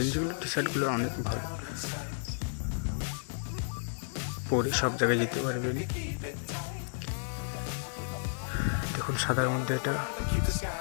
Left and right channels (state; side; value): silent; right; digital silence